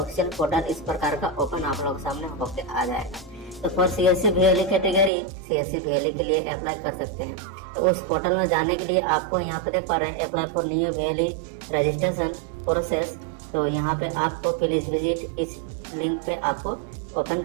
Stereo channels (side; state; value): left; drops out; at 5.1 s